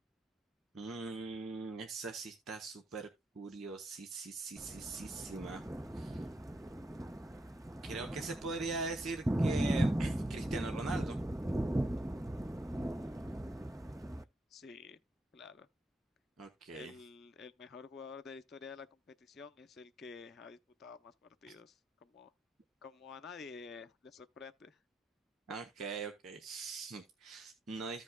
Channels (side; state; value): both; normal; correlation 0.81